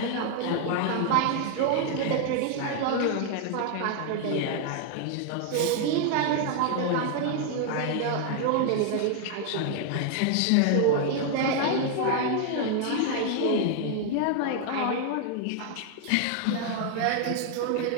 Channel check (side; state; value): both; different; correlation 0.00